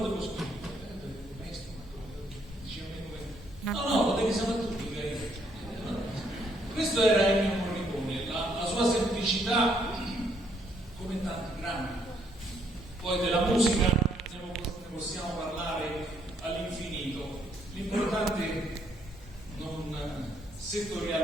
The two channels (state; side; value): normal; both; correlation 0.70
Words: scrivere? Maestro, dice a me come... No, lo devi sapere tu, dica io. Questo era Ennio Morricone, la sua semplicità, come tanti grandi. Poi della musica ne possiamo parlare all'infinito. L'importante è non